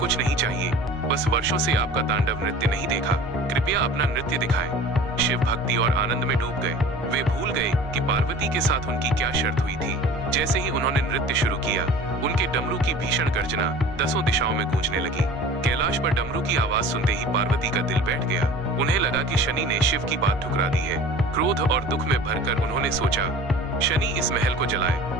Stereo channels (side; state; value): both; normal; correlation 0.42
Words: नहीं चाहिए, बस वर्षों से आपका तांडव नृत्य नहीं देखा, कृपया अपना नृत्य दिखाएं। शिव भक्ति और आनंद में डूब गए। वे भूल गए कि पार्वती के साथ उनकी क्या शर्त हुई थी। जैसे ही उन्होंने नृत्य शुरू किया, उनके डमरू की भीषण गर्जना 10 दिशाओं में गूंजने लगी। कैलाश पर डमरू की आवाज सुनते ही पार्वती का दिल बैठ गया। उन्हें लगा कि शनि ने शिव की बात ठुकरा दी है। क्रोध और दुख में भरकर उन्होंने सोचा, शनि इस महल को